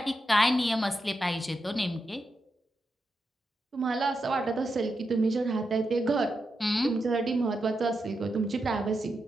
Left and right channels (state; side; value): normal; both; correlation 0.87